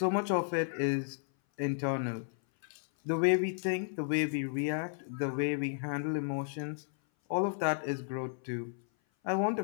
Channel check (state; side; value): silent; right; 56 dB below the other